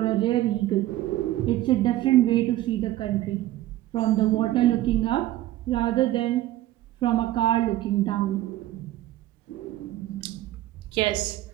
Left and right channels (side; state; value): left; quieter; 15.0 dB